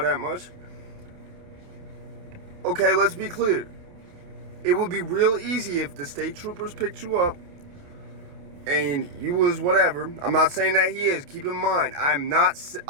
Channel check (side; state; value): left; late; 28 ms